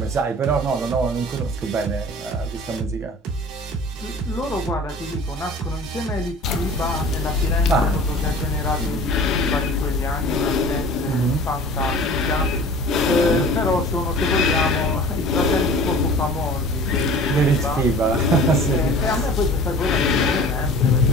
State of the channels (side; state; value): both; normal; correlation 0.43